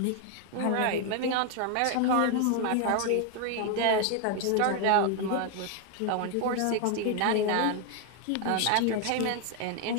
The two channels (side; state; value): both; different; correlation 0.01